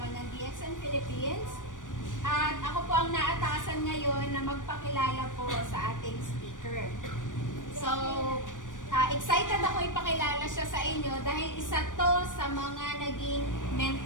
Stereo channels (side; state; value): right; late; 0.88 ms